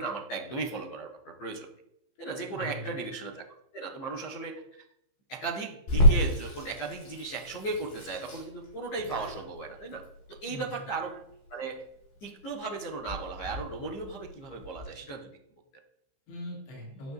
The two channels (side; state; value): right; late; 15 ms